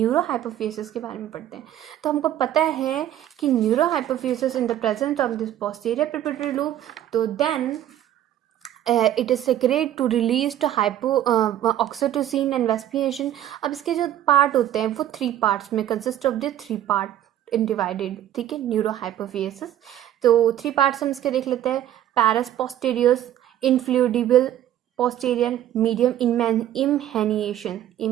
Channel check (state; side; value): quieter; left; 11.9 dB